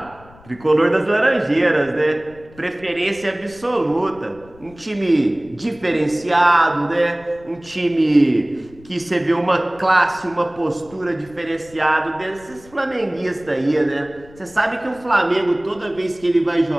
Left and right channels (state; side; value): noise; left; rumble, 24 dB below the sound